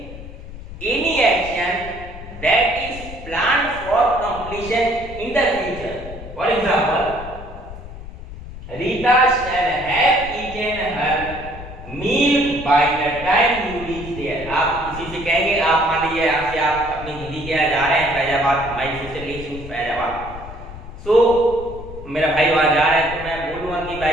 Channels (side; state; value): left; noise; rumble, 13 dB below the sound